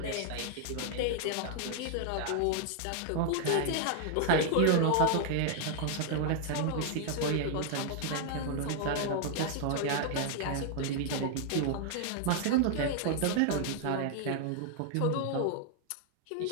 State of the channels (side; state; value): both; different; correlation 0.00